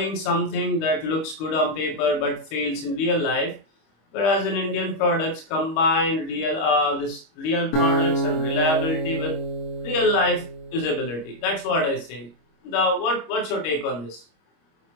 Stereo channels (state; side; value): late; right; 25 ms